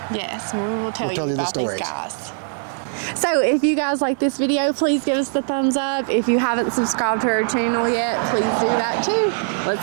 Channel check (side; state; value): left; silent; 64 dB below the other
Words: yes, we will tell you the about stories. These guys. So if you guys like this video, please give us the thumbs up. If you haven't subscribed to our channel yet, please do that too.